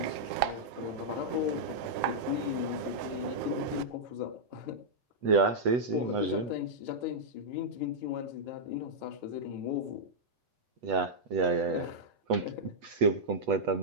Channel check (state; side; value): late; left; 8.2 ms